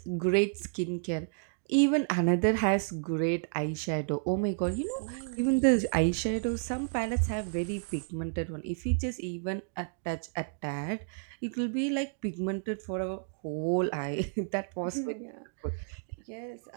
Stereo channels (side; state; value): left; silent; digital silence